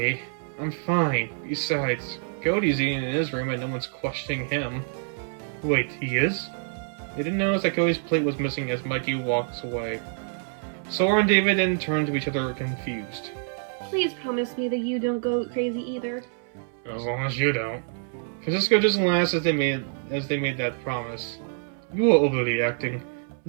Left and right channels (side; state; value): left; silent; 61 dB below the other